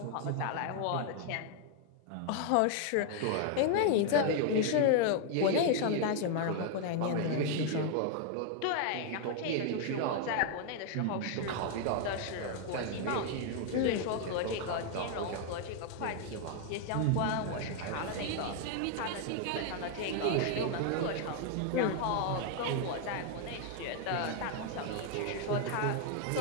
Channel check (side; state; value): both; different; correlation 0.00